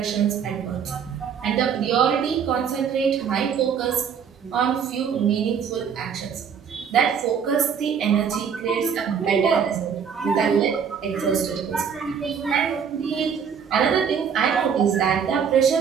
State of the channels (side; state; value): left; quieter; 7.2 dB